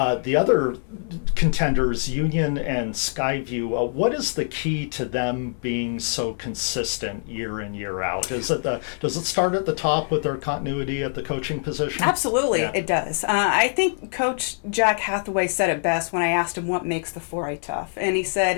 other contenders, Union and Skyview, what is the key to them being so consistent year in, year out? Does it start at the top with their continuity at the coaching position? Absolutely, Yeah. it does. I think Coach Jack Hathaway said it best when I asked him what makes the 4A tough, and he said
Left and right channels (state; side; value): silent; right; 59 dB below the other